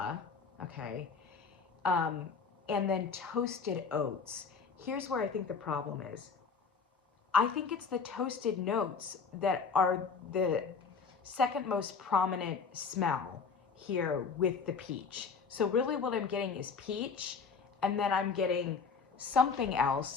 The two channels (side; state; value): right; quieter; 5.4 dB